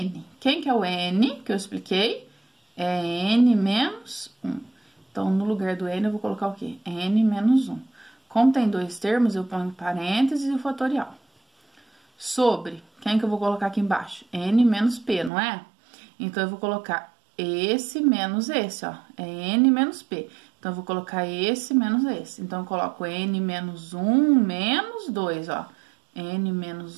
Quem que é o n que eu expliquei? É n menos 1. Então, no lugar do n, eu vou colocar o quê? n menos 1. Como tem dois termos, eu ponho parênteses e o fatorial. Sobre, quem que eu vou colocar aqui embaixo? n menos p, não é? Então, eu vou colocar esse menos esse, ó. É n menos p. Então, eu vou colocar esse menos esse. Então, eu coloco n menos 1 menos 2, ó. n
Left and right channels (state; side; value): drops out; left; at 15.3 s